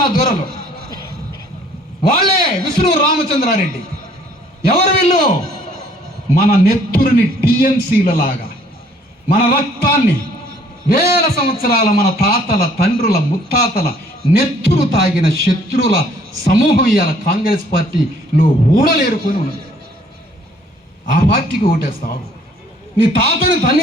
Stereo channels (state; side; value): normal; both; correlation 0.60